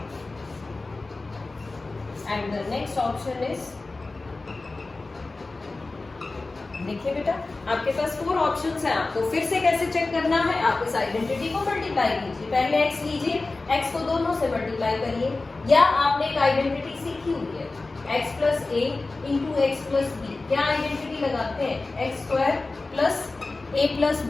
and the next option is, देखिए बेटा आपके पास 4 ऑप्शंस हैं। आपको फिर से कैसे चेक करना है, आप इस आइडेंटिटी को मल्टीप्लाई कीजिए। पहले x लीजिए, x को दोनों से मल्टीप्लाई करिए, या आपने एक आइडेंटिटी सीखी हुई है x plus a into x plus b. क्या आइडेंटिटी लगाते हैं, x square plus a plus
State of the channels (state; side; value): quieter; right; 3.4 dB